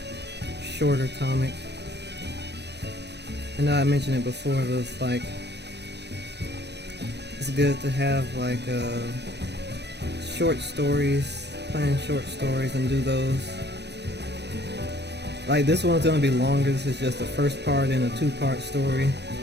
shorter comic. I know I mentioned it before, but it's like it's good to have like short stories, plan short stories and do those. Like this one's gonna be longer. This is just the first part in a two-part story,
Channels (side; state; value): left; late; 0.50 ms